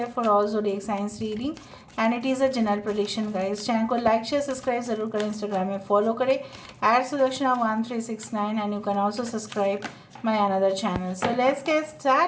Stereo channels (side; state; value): both; identical; correlation 1.00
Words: for all zodiac signs reading and it is a general prediction guys। Channel को लाइक शेयर सब्सक्राइब जरूर करें, इंस्टाग्राम में फॉलो करें @Sudakshana1369 and you can also subscribe my another channel। So let's get